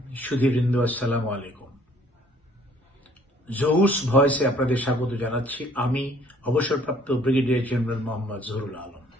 সুধীবৃন্দ, আসসালামু আলাইকুম। জহুস ভয়েসে আপনাদের স্বাগত জানাচ্ছি। আমি অবসরপ্রাপ্ত ব্রিগেডিয়ার জেনারেল মোহাম্মদ জহুরুল আলম।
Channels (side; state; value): both; normal; correlation 0.58